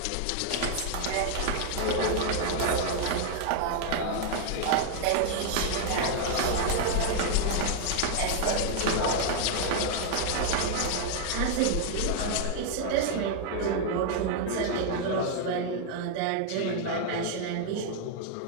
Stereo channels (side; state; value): both; different; correlation 0.00